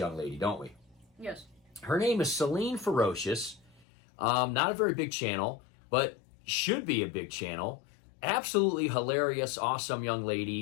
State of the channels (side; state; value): right; drops out; at 3.9 s